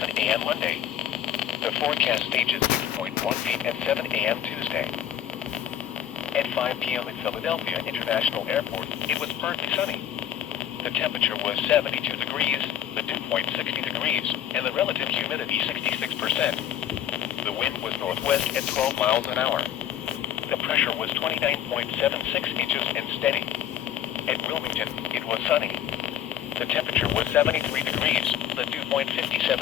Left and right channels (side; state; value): right; quieter; 10.4 dB